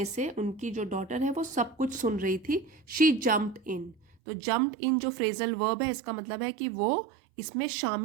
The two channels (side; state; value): left; drops out; at 4.2 s